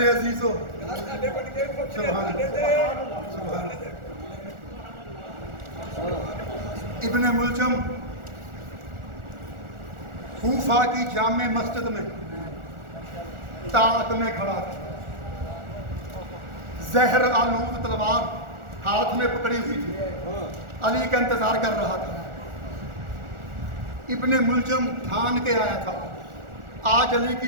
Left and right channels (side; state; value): left; late; 1.4 ms